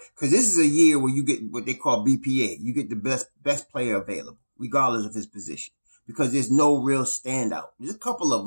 because this is a year where you get what they call BPA. You get the best player available, regardless of his position, because there's no real standout. There's a couple of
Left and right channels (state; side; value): inverted; both; correlation -1.00